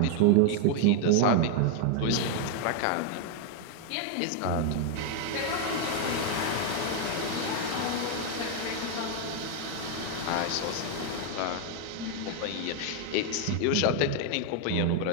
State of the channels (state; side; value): different; both; correlation 0.00